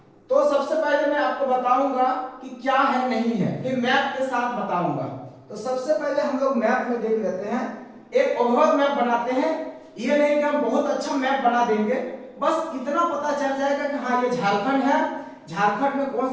तो सबसे पहले मैं आपको बताऊंगा कि क्या है नहीं है, फिर मैप के साथ बताऊंगा। तो सबसे पहले हम लोग मैप में देख लेते हैं। एक ओवरऑल मैप बनाते हैं। ये नहीं कि हम बहुत अच्छा मैप बना देंगे, बस इतना पता चल जाएगा कि हाँ ये झारखंड है, झारखंड में कौन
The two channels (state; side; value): identical; both; correlation 1.00